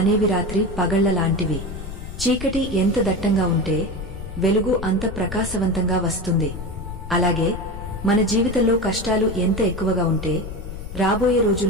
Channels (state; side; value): noise; left; rumble, 10 dB below the sound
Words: రాత్రి పగళ్లలాంటివి. చీకటి ఎంత దట్టంగా ఉంటే వెలుగు అంత ప్రకాశవంతంగా వస్తుంది. అలాగే మన జీవితంలో కష్టాలు ఎంత ఎక్కువగా ఉంటే రాబోయే